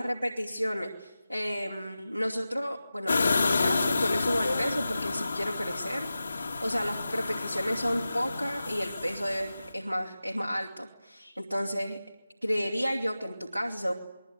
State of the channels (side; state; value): both; inverted; correlation -0.94